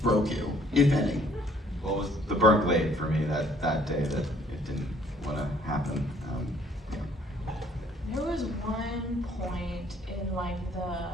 broke you, if any. Well, it was the burnt glade for me that day that it didn't want to happen. There was one point in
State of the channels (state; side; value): normal; both; correlation 0.61